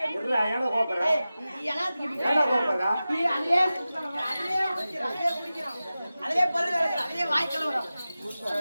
ஏடா கோபறா ஏடா கோபறா அதிலே பல்லு கிடக்குற அதிலே வாய் கலவரம்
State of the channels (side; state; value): both; inverted; correlation -0.95